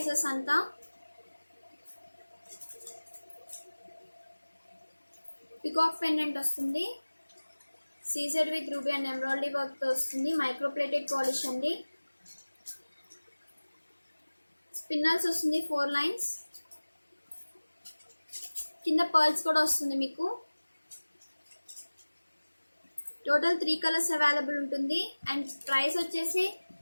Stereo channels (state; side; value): inverted; both; correlation -1.00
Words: అంతా. పికాక్ పెండెంట్ వస్తుంది, CZ with ruby and embroidery work తో వస్తుంది. మైక్రో ప్లేటెడ్ పాలిష్ అండి. స్పిన్నల్స్ వస్తుంది, 4 లైన్స్. కింద పర్ల్స్ కూడా వస్తుంది మీకు. టోటల్ 3 కలర్స్ అవైలబుల్ ఉంటుంది అండ్ ప్రైస్ వచ్చేసి